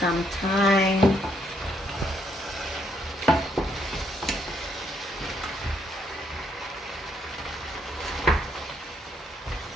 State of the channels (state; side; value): normal; both; correlation 0.72